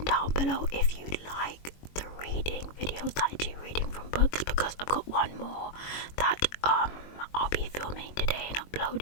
down below if you like the reading videos that I do reading from books, because I've got one more that I'll be filming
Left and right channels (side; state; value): right; late; 21 ms